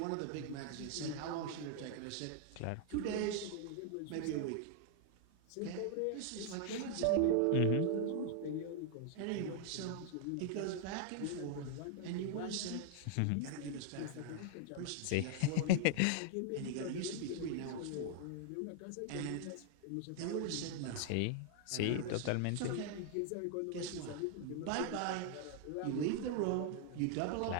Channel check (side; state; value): both; different; correlation 0.00